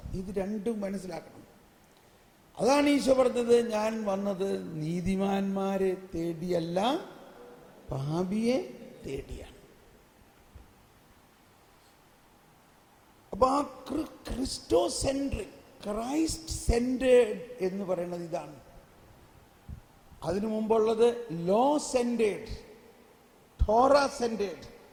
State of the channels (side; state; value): both; identical; correlation 1.00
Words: ഇത് രണ്ടും മനസ്സിലാക്കണം. അതാണ് ഈശോ പറഞ്ഞത്, ഞാൻ വന്നത് നീതിമാന്മാരെ തേടിയല്ല പാപിയെ തേടിയാണ്. അപ്പൊ അപ്പൊ ആ ക്രിസ്റ്റോ സെൻട്രിക്, ക്രൈസ്റ്റ് സെന്റേഡ് എന്ന് പറയുന്നത് ഇതാണ്. അതിനു മുമ്പുള്ളത് ലോ സെന്റേഡ്, ടോറ സെന്റേഡ്,